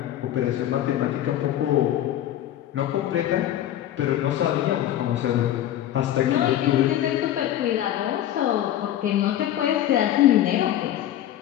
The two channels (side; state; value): right; quieter; 12.2 dB